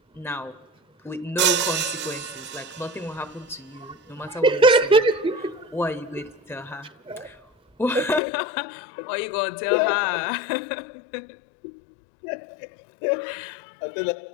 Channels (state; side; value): drops out; right; at 8.2 s